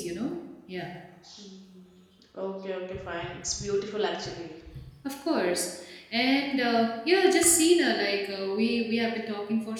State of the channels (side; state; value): both; identical; correlation 1.00